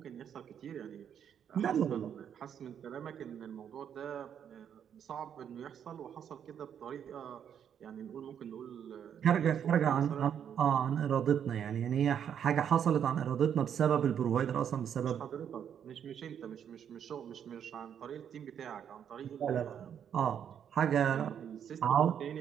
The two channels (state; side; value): quieter; left; 8.6 dB